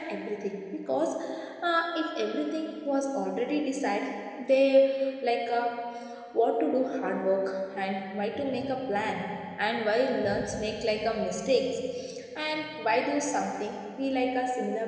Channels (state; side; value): identical; both; correlation 1.00